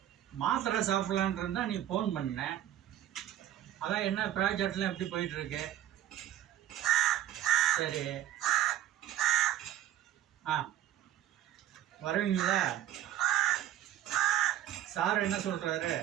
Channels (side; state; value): left; quieter; 12.2 dB